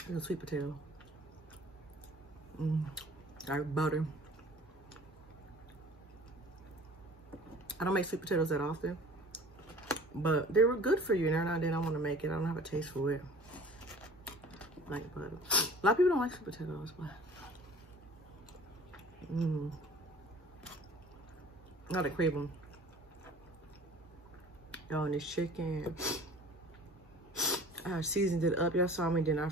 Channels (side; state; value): both; normal; correlation 0.46